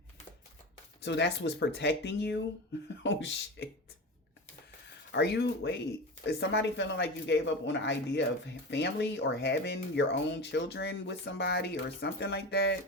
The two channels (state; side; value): normal; both; correlation 0.27